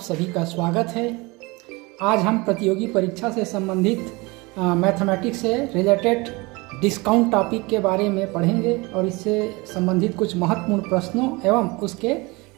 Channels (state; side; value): quieter; left; 24.8 dB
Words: का स्वागत है। आज हम प्रतियोगी परीक्षा से संबंधित मैथमेटिक्स से रिलेटेड डिस्काउंट टॉपिक के बारे में पढ़ेंगे और इससे संबंधित कुछ महत्वपूर्ण प्रश्नों एवं उसके